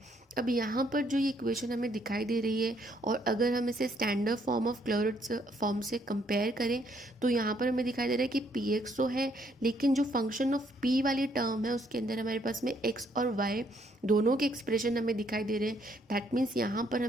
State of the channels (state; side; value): normal; both; correlation 0.69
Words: अब यहाँ पर जो ये इक्वेशन हमें दिखाई दे रही है, और अगर हम इसे स्टैंडर्ड फॉर्म ऑफ क्लैरोट्स फॉर्म से कंपेयर करें तो यहाँ पर हमें दिखाई दे रहा है कि पी एक्स तो है, लेकिन जो फंक्शन ऑफ पी वाली टर्म है उसके अंदर हमारे पास में एक्स और वाई दोनों के एक्सप्रेशन हमें दिखाई दे रहे हैं। दैट मीन्स यहाँ पर